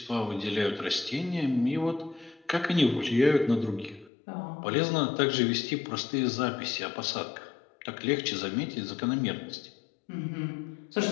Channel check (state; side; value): drops out; right; at 4.1 s